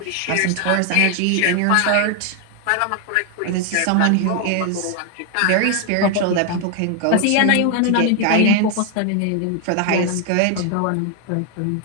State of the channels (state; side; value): different; both; correlation 0.01